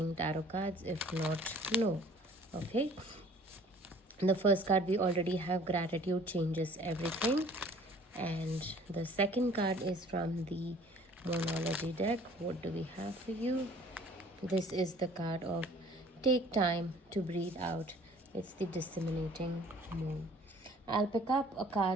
tarot cards. If not, no. Okay. The first card we already have, gratitude changes everything, and the second card is from the Monology deck. What do we have for you? This is the card of take time to breathe out. It's the disseminating moon. I'll pick up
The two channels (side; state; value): both; normal; correlation 0.52